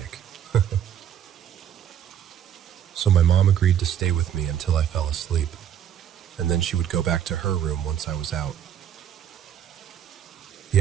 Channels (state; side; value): quieter; left; 9.6 dB